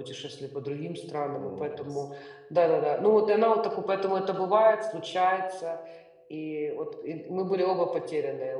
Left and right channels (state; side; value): identical; both; correlation 1.00